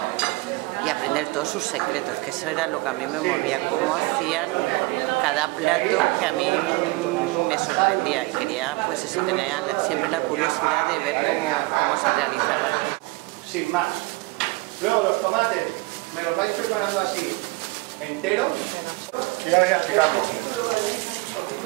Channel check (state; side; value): quieter; left; 23.3 dB